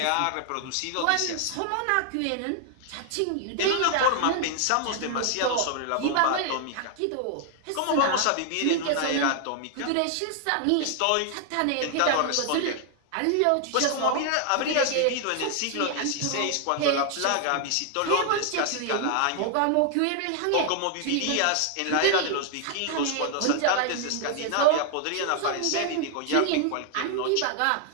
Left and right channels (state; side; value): different; both; correlation 0.00